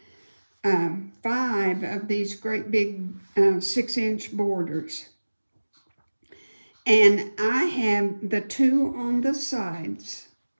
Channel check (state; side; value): inverted; both; correlation -1.00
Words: 5 of these great big 6-inch borders. And I have the 2 on the sides.